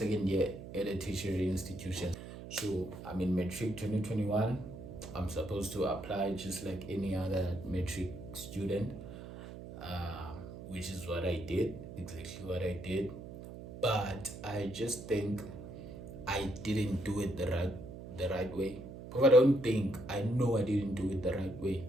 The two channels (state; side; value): noise; right; hum, 12 dB below the sound